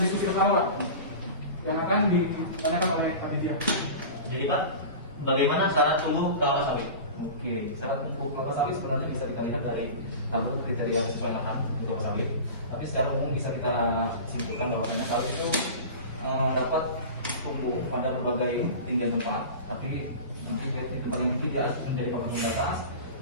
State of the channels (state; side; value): inverted; both; correlation -0.33